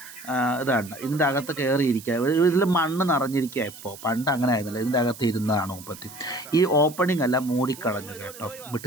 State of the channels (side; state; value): right; noise; hiss, 16 dB below the sound